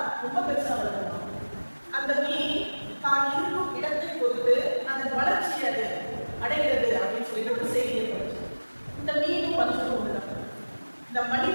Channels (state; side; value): inverted; both; correlation -1.00